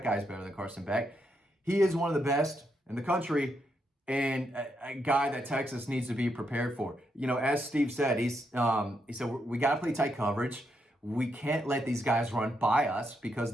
guy's better than Carson Beck. He is one of the best in the country and a guy that Texas needs to be prepared for. As Steve said, he said, we got to play tight coverage. We can't let these guys run by us because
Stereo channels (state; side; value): normal; both; correlation 0.80